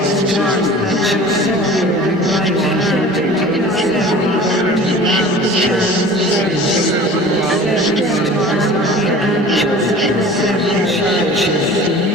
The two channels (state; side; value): normal; both; correlation 0.41